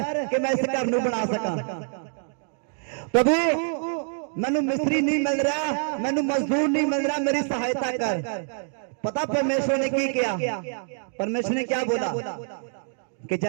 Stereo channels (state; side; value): silent; left; 61 dB below the other